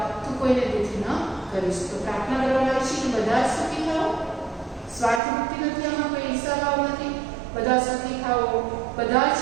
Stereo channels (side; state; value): left; drops out; at 5.2 s